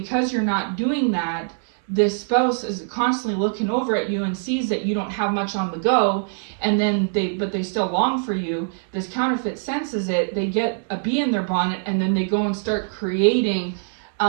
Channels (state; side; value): silent; left; digital silence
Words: you're not doing that, this spouse is constantly looking over at you and sees that you don't have much on the go, and then they still long for you. This counterfeit senses it, they get a bee in their bonnet, and then they go and start creating